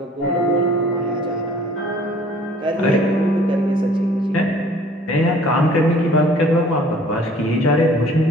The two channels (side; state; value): both; normal; correlation 0.53